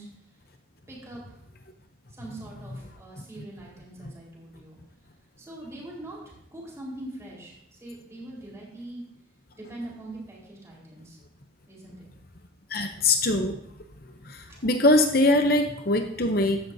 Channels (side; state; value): both; normal; correlation 0.34